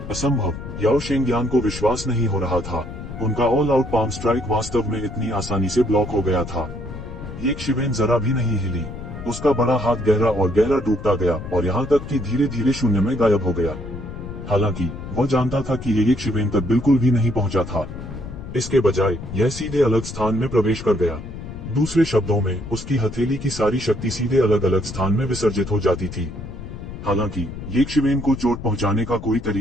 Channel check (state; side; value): noise; left; rumble, 10 dB below the sound